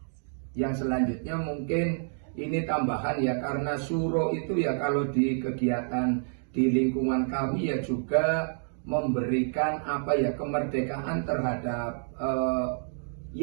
Yang selanjutnya mungkin ini tambahan ya, karena suro itu ya kalau di kegiatan di lingkungan kami ya juga memberikan apa ya kemerdekaan terhadap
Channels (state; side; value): silent; left; digital silence